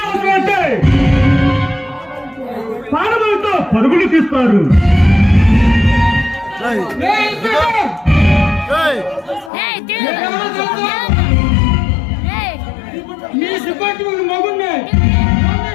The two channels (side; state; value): right; drops out; at 9.5 s